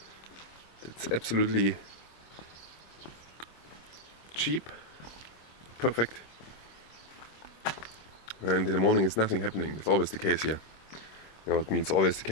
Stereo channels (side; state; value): right; late; 25 ms